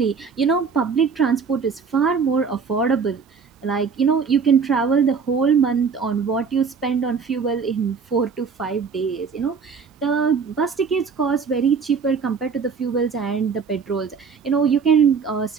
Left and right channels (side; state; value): left; quieter; 5.7 dB